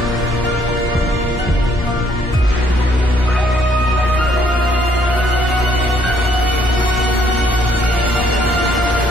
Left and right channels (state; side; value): normal; both; correlation 0.66